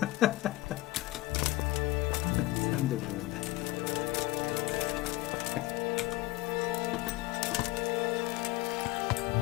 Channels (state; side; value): quieter; right; 19.5 dB